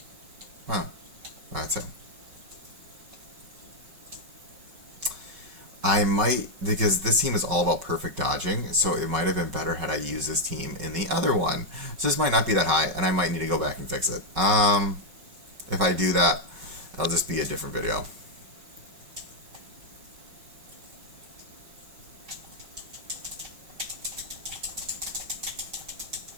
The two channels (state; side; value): late; left; 5.3 ms